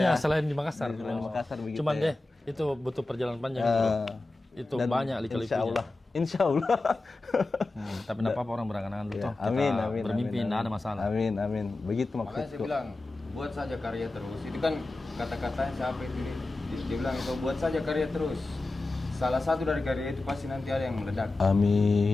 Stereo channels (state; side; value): quieter; right; 3.0 dB